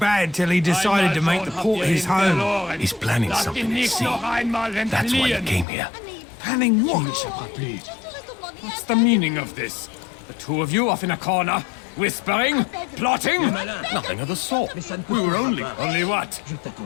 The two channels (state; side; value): drops out; right; at 5.7 s